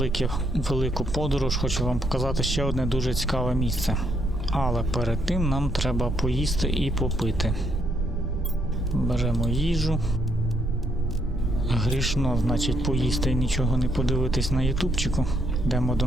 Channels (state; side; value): normal; both; correlation 0.74